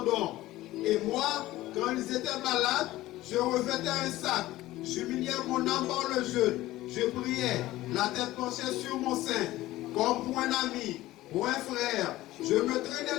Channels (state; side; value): quieter; right; 16.6 dB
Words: Et moi, quand ils étaient malades, je revêtais un sac. J'humiliais mon âme par le jeûne. Je priais, la tête penchée sur mon sein, comme pour un ami, pour un frère. Je me traînais